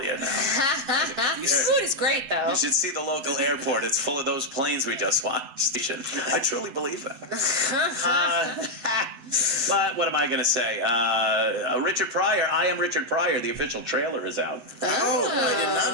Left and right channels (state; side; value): late; left; 8.0 ms